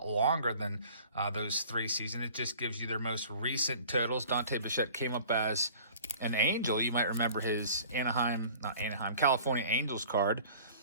longer than those 3 seasons. It just gives you their most recent totals. Dante Bichette came up as an Angel. You might remember his California Angels card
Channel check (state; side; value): inverted; both; correlation -0.47